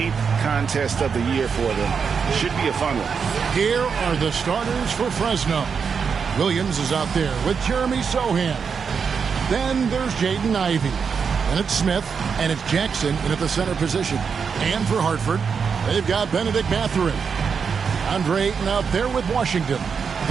contest of the year for them. Should be a fun one. Here are the starters for Fresno. Williams is out there with Jeremy Sohan. Then there's Jaden Ivey. And it's Smith, and it's Jackson in at the center position. And for Hartford, they've got Benedict Mathurin. Andre Ayton out there with Washington.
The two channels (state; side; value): quieter; left; 6.1 dB